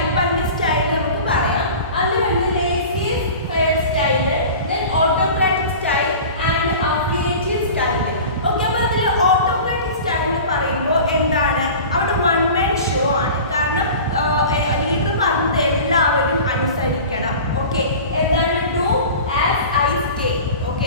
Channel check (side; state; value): both; inverted; correlation -0.37